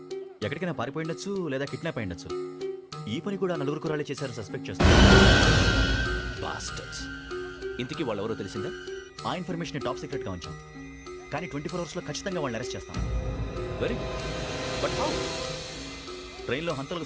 ఎక్కడికైనా పారిపోయిండొచ్చు, లేదా కిడ్నాప్ అయ్యుండొచ్చు. ఈ పని కూడా నలుగురు కురాలే చేశారు సస్పెక్ట్ చేస్తారు. బాస్టర్స్. ఇంతకీ వాళ్ళు ఎవరో తెలిసిందా? ఆ ఇన్ఫర్మేషన్ టాప్ సీక్రెట్గా ఉంచాం, కానీ 24 అవర్స్లో ఖచ్చితంగా వాళ్ళని అరెస్ట్ చేస్తాం. Very but how? ట్రైన్లో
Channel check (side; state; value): both; identical; correlation 1.00